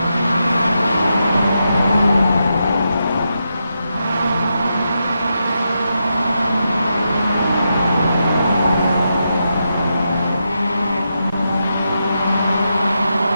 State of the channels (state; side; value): inverted; both; correlation -0.85